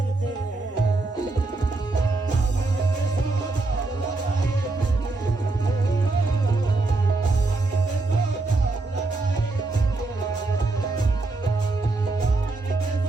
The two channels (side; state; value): left; quieter; 3.3 dB